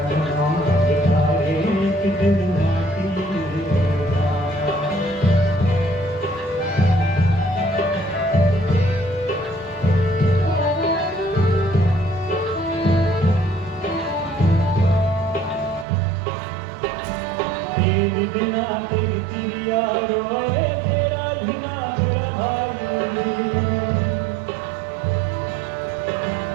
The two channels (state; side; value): drops out; left; at 15.9 s